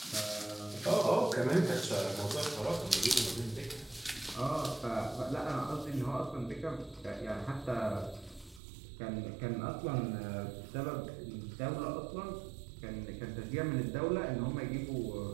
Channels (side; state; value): left; drops out; at 8.6 s